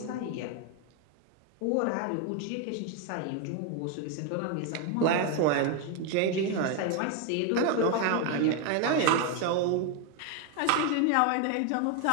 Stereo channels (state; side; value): different; both; correlation 0.01